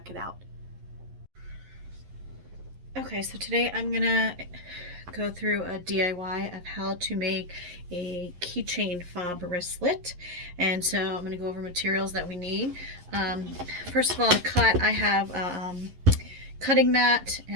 it out. Okay, so today I'm going to go through a DIY of how to make a keychain fob wristlet. And so I'm going to go over materials that we need. First of all, to cut, I have a cutting mat,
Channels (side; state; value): left; late; 11 ms